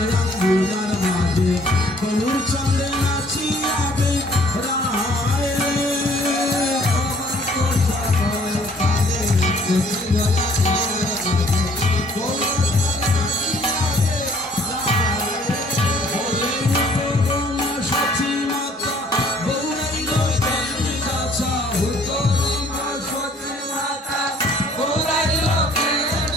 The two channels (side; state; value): both; normal; correlation 0.59